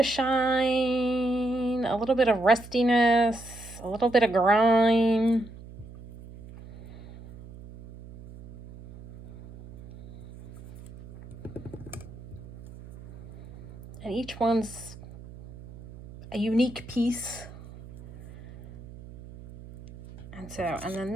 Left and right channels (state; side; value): noise; right; hum, 16 dB below the sound